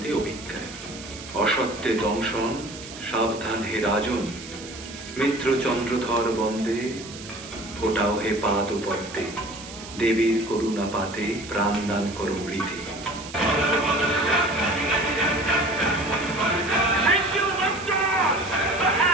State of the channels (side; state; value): right; noise; hiss, 14 dB below the sound